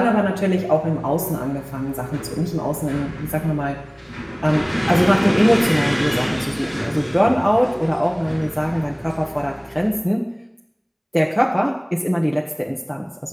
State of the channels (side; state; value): both; identical; correlation 1.00